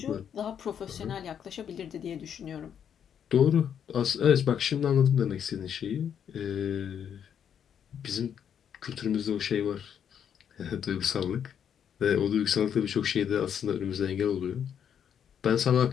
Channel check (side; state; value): right; quieter; 8.5 dB